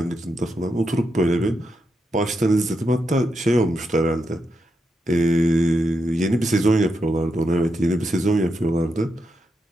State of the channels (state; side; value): normal; both; correlation 0.84